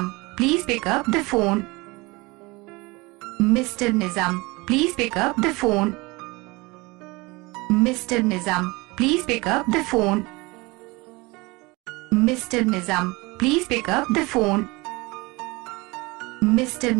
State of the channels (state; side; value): quieter; left; 24.1 dB